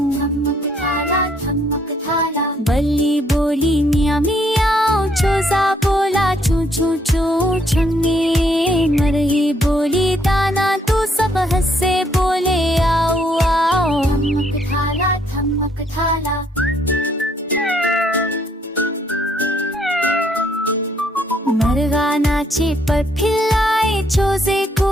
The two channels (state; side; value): normal; both; correlation 0.69